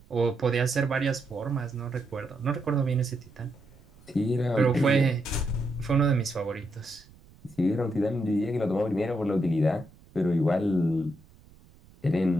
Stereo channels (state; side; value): noise; right; rumble, 26 dB below the sound